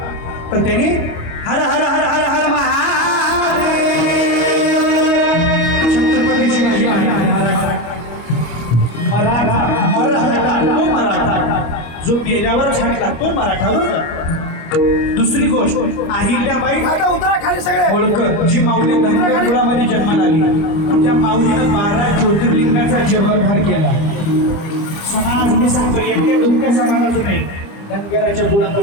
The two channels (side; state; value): right; late; 25 ms